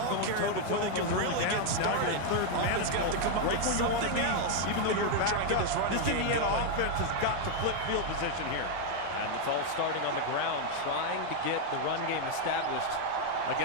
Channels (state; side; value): different; both; correlation 0.00